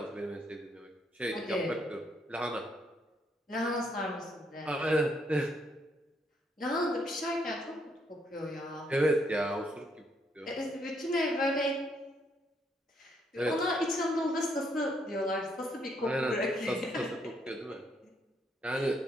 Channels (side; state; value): both; normal; correlation 0.73